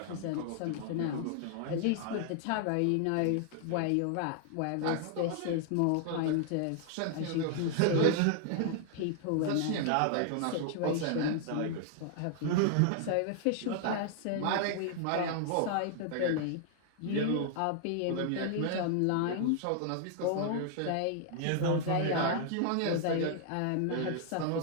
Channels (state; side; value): different; both; correlation 0.00